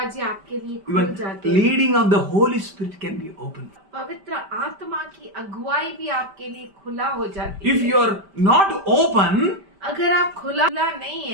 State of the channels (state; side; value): late; left; 5.1 ms